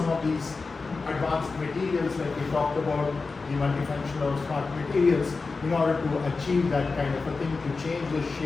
of these advanced materials like we talked about, the multifunctional or smart materials, in order to achieve that kind of a thing, to change the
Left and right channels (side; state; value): right; quieter; 4.2 dB